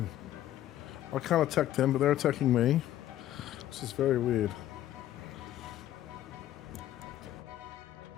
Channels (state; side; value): quieter; right; 12.9 dB